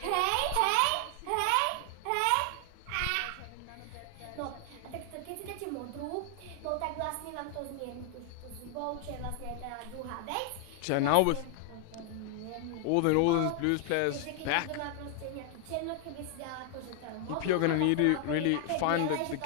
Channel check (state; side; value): different; both; correlation 0.00